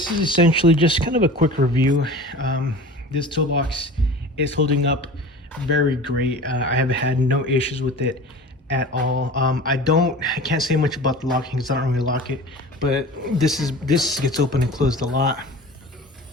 is essentially just kind of a quick review. This toolbox It's holding up very great. I have had no issues with it at all. I can't say much about the locking because I don't really lock it, but this gets open and closed a lot.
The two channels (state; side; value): normal; both; correlation 0.37